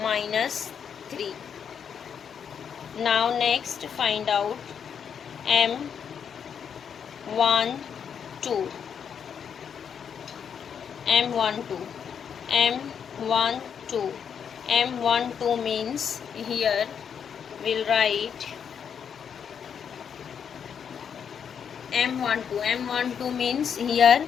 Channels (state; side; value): quieter; right; 7.5 dB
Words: minus 3. Now next find out M12. M12. M12. M12 means here we'll write M12. M12 means here